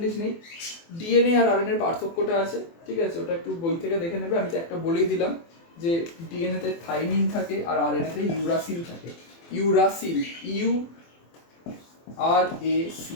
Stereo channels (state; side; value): late; right; 24 ms